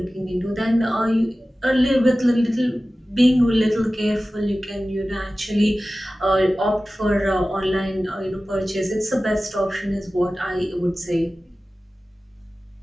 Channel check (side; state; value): both; normal; correlation 0.96